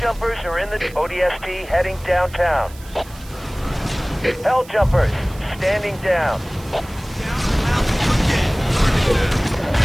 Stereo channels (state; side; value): noise; right; hiss, 21 dB below the sound